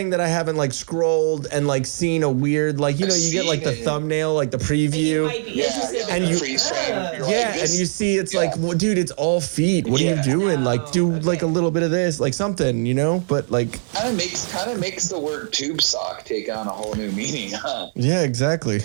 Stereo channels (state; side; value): silent; left; digital silence